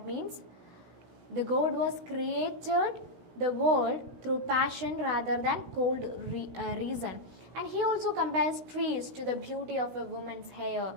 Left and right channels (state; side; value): late; left; 16 ms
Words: means the God was created the world through passion rather than cold reason. And he also compares trees to the beauty of a woman's hair.